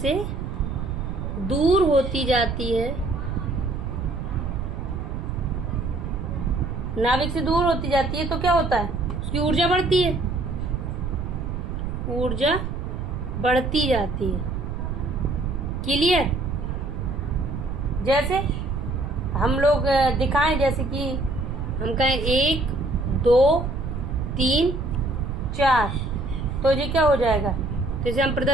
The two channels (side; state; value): right; noise; rumble, 4 dB below the sound